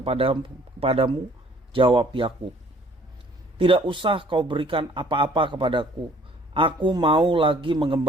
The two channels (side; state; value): both; normal; correlation 0.57